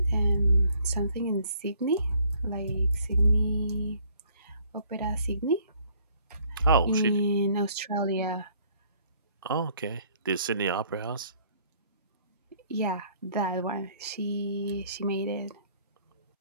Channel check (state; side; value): inverted; both; correlation -0.62